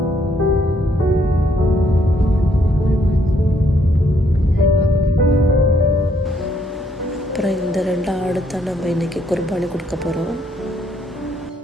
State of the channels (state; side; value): normal; both; correlation 0.71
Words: அப்புறம் இந்த 2 ஆடு தான் நம்ம இன்றைக்கி குர்பானி கொடுக்க போகிறோம்.